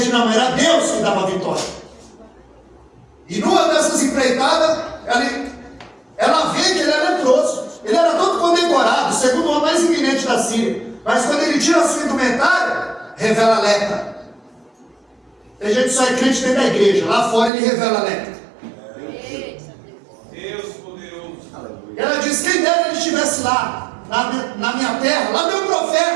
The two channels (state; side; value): drops out; left; at 17.5 s